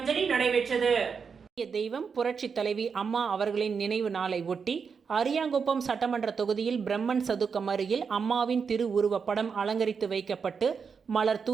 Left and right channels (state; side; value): quieter; left; 5.9 dB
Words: நடைபெற்றது. தெய்வம் புரட்சி தலைவி அம்மா அவர்களின் நினைவு நாளை ஒட்டி அரியாங்குப்பம் சட்டமன்ற தொகுதியில் பிரம்மன் சதுக்கம் அருகில் அம்மாவின் திரு உருவப்படம் அலங்கரித்து வைக்கப்பட்டு மலர்